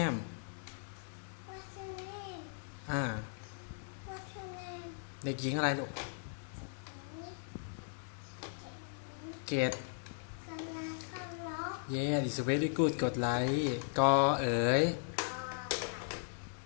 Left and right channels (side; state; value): right; silent; 53 dB below the other